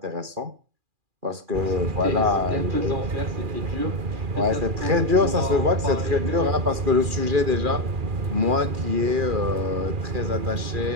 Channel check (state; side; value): late; left; 2.4 ms